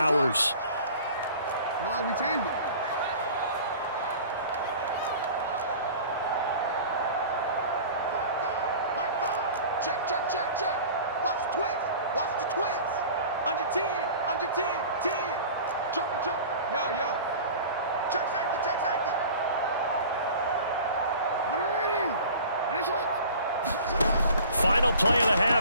No, we changed it. Check, check, check, check. Watch the twist. Watch the twist. Under 10, under 10, 10. Joker, joker. Yo, yo. Check safety, check safety. Final play of the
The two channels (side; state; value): both; inverted; correlation -0.42